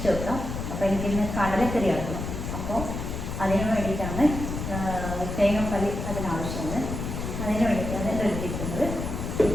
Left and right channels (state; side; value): noise; left; rumble, 5 dB below the sound